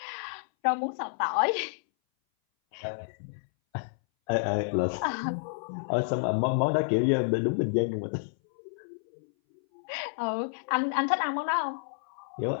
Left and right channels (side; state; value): right; silent; 58 dB below the other